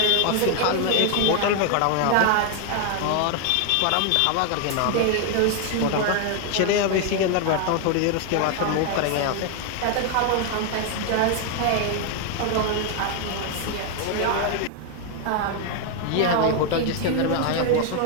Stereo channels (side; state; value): both; different; correlation 0.01